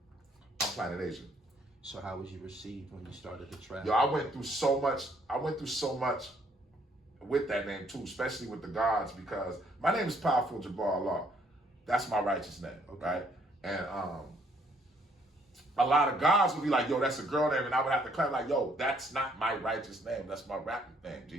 I'm Planet Asia. So how was you received when you started to travel? Yo, I went through so much with that name too, especially with the gods, because my name is Powerful Jabbar Allah. That's my righteous name, right? And a lot of guys would be like, yo, that's a girl name, and I would have to clap like, yo, that's not my righteous name. That's my rapping name.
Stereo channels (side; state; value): both; normal; correlation 0.66